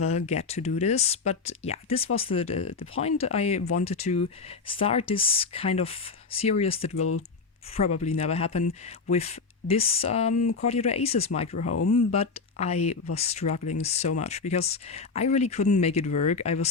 get to do this, but yeah, this was the point. I wanted to start this kind of series that will probably never happen with this Courtyard Oasis micro home, but I was struggling so much because I really couldn't make it work. I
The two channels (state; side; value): quieter; right; 4.6 dB